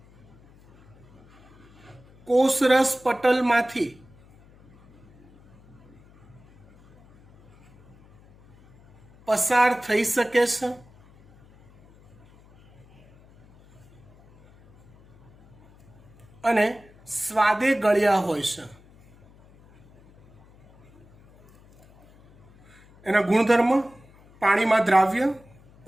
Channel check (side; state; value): left; noise; hum, 27 dB below the sound